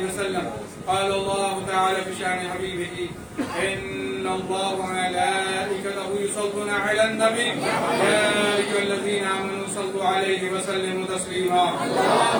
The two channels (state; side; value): identical; both; correlation 1.00